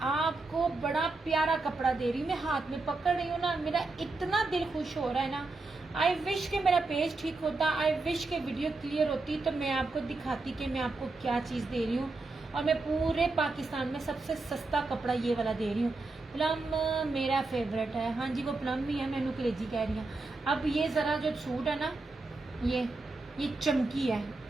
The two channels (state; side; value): quieter; left; 3.4 dB